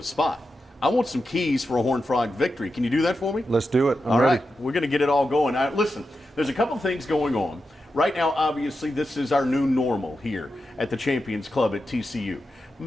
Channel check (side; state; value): both; normal; correlation 0.89